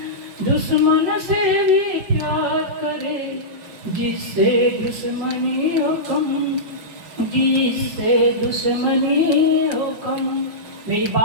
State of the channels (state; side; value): late; left; 5.6 ms